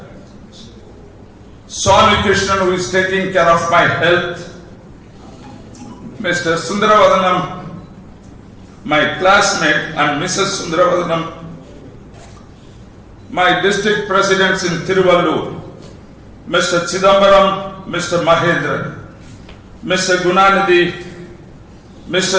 Swami Krishnan, who is taking care of my health, Mr. Sundaravadanam, my classmate, and Mrs. Sundaravadanam, my district presidents in Tiruvallur, Mr. Chidambaram, Mr. Mahendran, Mr. Gunanidhi,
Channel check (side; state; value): both; identical; correlation 1.00